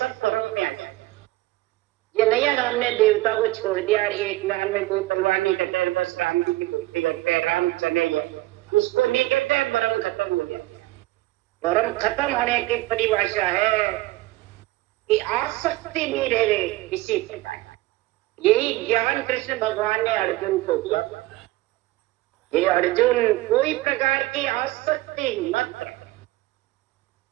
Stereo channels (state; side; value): quieter; left; 18.6 dB